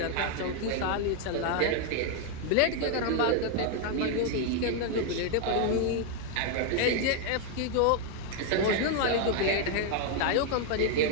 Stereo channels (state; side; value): different; both; correlation 0.01